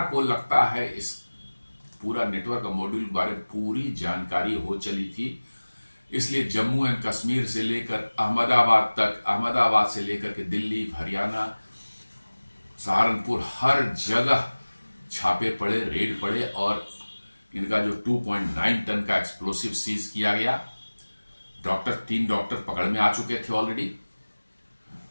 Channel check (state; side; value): inverted; both; correlation -1.00